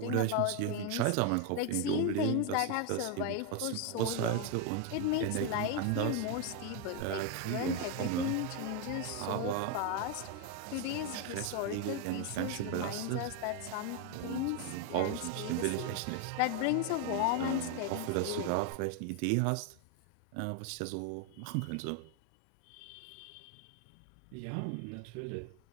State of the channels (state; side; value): different; both; correlation 0.01